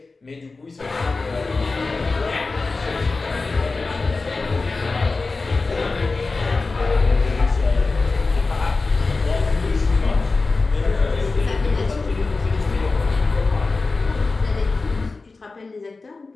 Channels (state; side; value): quieter; right; 3.8 dB